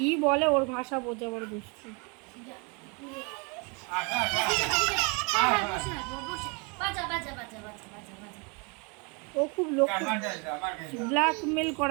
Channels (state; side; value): quieter; left; 32.6 dB